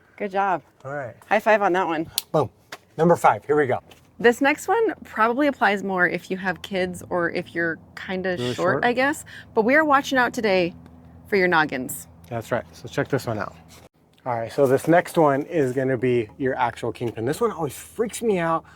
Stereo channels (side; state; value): both; identical; correlation 1.00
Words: good job. All right. High five on that one. Boom. Number 5, here we go. This next one probably applies more if you have kids or if you're kind of Really short, I guess. But we are watching out today for your noggins. That's right. So check this one out. All right, so this next one is gonna be your actual kingpin. This one always freaks me out